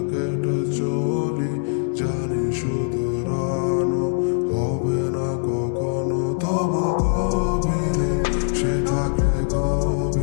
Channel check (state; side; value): silent; right; digital silence